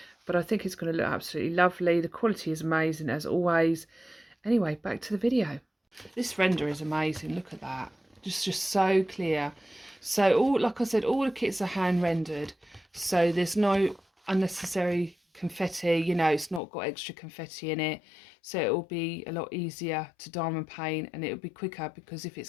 But I think it's going to look absolutely lovely. The quality is amazing as always. Anyway, back to the video. This render is amazing. Look at that. Just so clear. So all, like I said, all the kits are hand rendered. So there's no unnecessary confetti. You know, it's not got extra confetti in it. So it will be a lot easier to diamond paint, and it'll be quicker because if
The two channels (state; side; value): drops out; right; at 16.6 s